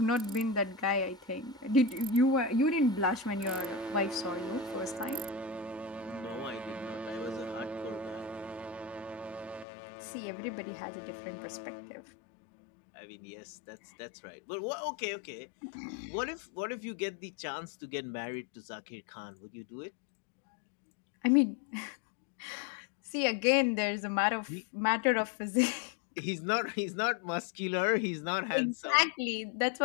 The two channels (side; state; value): right; drops out; at 9.7 s